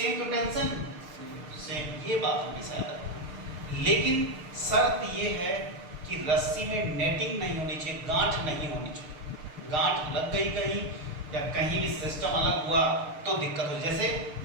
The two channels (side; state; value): left; late; 6.6 ms